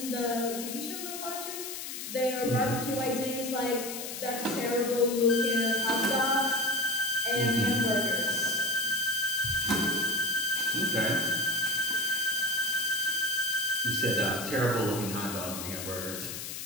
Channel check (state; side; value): noise; left; hiss, 7 dB below the sound